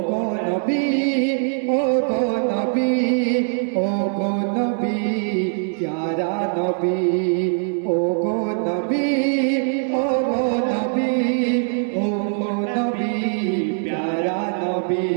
গো নবী, ও গো নবী, ও গো নবী, প্যারা নবী। ও গো নবী, ও গো নবী, ও গো নবী, প্যারা নবী।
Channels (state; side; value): silent; left; digital silence